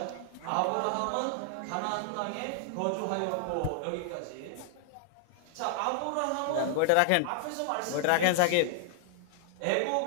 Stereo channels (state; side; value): different; both; correlation 0.00